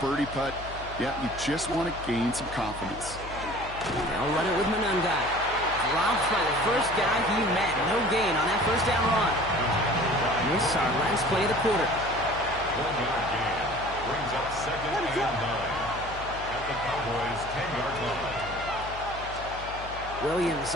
birdie putt. Yeah, you just want to gain some confidence. They'll run it with Manungai. Dropped by the first guy he met. No gain on that 1st down run. This is our last play of the quarter. 1-yard gain brings up 2nd and 9 at the Cowboys' 10-yard line. Williams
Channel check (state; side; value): noise; left; hum, 13 dB below the sound